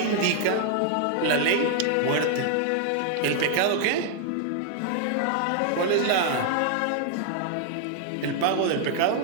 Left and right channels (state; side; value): different; both; correlation 0.00